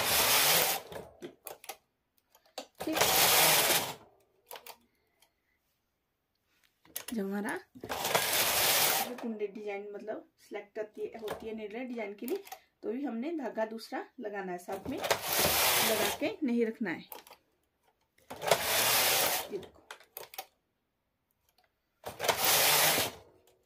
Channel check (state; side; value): identical; both; correlation 1.00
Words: जब हमारा कुंडे डिजाइन मतलब सिलेक्ट होती है नीडल डिजाइन के लिए, तो भी हमने धागा दूसरा लगाना है, साथ में लगा के नहीं रखना है। ये देखो,